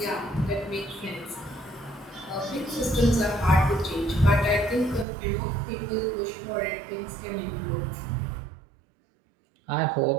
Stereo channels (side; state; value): left; drops out; at 5.1 s